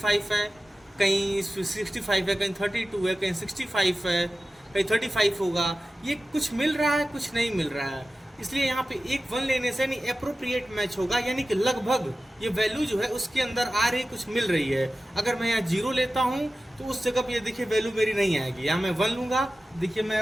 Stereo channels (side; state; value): both; normal; correlation 0.95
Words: है, कहीं 65 है, कहीं 32 है, कहीं 65 है, कहीं 35 होगा। ये कुछ मिल रहा है, कुछ नहीं मिल रहा है। इसलिए यहाँ पे एक 1 लेने से नहीं एप्रोप्रिएट मैच होगा, यानी कि लगभग ये वैल्यू जो है उसके अंदर आ रही, कुछ मिल रही है। अगर मैं यहाँ 0 लेता हूँ तो उस जगह पे ये देखिए वैल्यू मेरी नहीं आएगी। यहाँ मैं 1 लूंगा। देखिए मैं